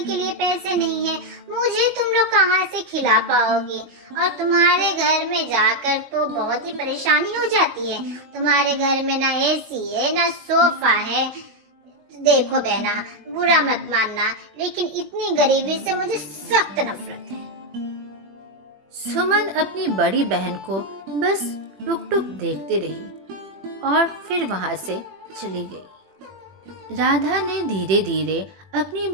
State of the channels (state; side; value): late; left; 21 ms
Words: लिए पैसे नहीं है, मुझे तुम लोग कहाँ से खिला पाओगे? और तुम्हारे घर में जाकर तो बहुत ही परेशानी हो जाती है। तुम्हारे घर में ना एसी है, ना सोफा है। देखो बहना, बुरा मत मानना, लेकिन इतनी गरीबी से मुझे सख्त नफरत है। सुमन अपनी बड़ी बहन को बस टुक टुक देखते रही और फिर वहां से चली गई। राधा ने धीरे धीरे अपनी